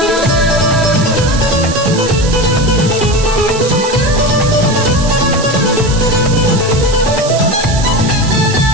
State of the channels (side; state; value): right; noise; hiss, 10 dB below the sound